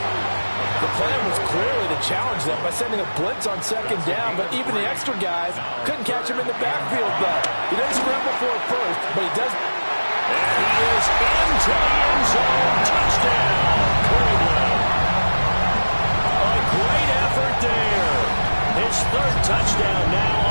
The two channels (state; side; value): inverted; both; correlation -1.00